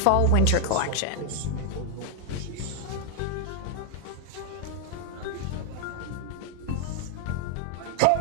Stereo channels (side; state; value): both; different; correlation 0.00